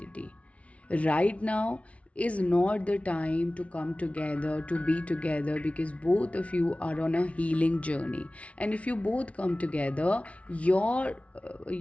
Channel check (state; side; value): late; right; 0.064 ms